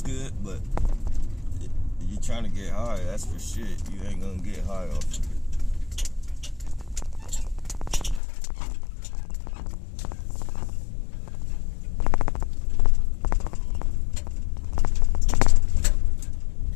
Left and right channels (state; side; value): drops out; right; at 8.2 s